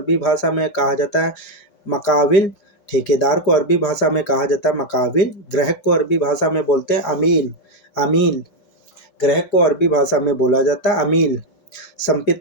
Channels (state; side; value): late; right; 5.1 ms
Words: भाषा में कहा जाता है मकाविल। ठेकेदार को अरबी भाषा में कहा जाता है मकाविल। ग्राहक को अरबी भाषा में बोलते हैं अमील। अमील ग्राहक को अरबी भाषा में बोला जाता है अमील।